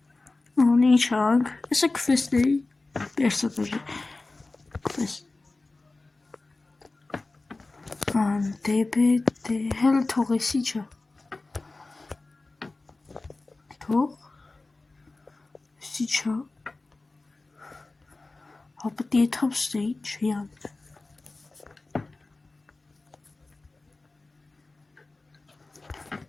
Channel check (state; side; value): quieter; right; 3.3 dB